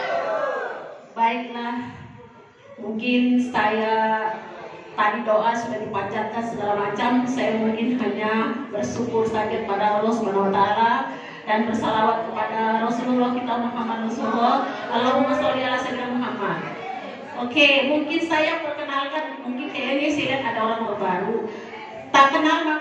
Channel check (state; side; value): identical; both; correlation 1.00